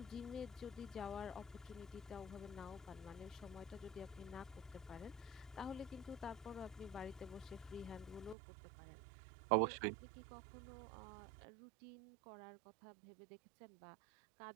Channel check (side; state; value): left; drops out; at 8.3 s